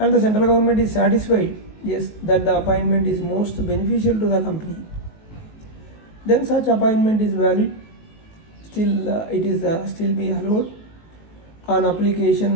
the central government is satisfied, yes, that the appointment is most beneficial to the company, then such appointment is valid. Still, it is still be allowed on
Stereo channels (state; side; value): late; right; 19 ms